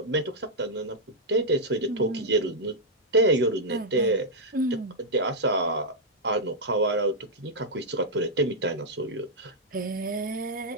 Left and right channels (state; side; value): normal; both; correlation -0.05